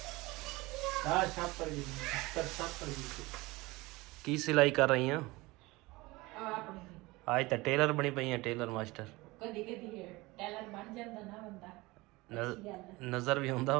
ਕੀ ਸਿਲਾਈ ਕਰ ਰਹੀ ਆ? ਅੱਜ ਤਾਂ ਟੇਲਰ ਬਣੀ ਪਈ ਆ, ਟੇਲਰ ਮਾਸਟਰ। ਕਦੀ ਕਦੀ ਟੇਲਰ ਬਣ ਜਾਂਦਾ ਨਾ ਬੰਦਾ। ਨਜ਼ਰ ਵੀ ਹੁੰਦਾ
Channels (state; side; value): quieter; left; 21.9 dB